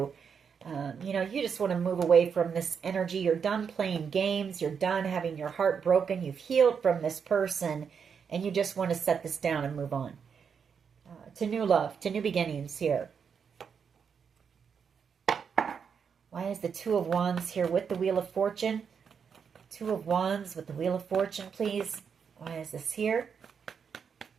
You just want to move away from this energy. You're done playing games. You're done having your heart broken. You've healed from this person, and you just want to set this down and move on. To new love, to new beginnings here. Why is the Two of Wands here with the Wheel of Fortune? Two of Wands with the Wheel of Fortune, please. Why is this here?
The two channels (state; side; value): quieter; left; 6.7 dB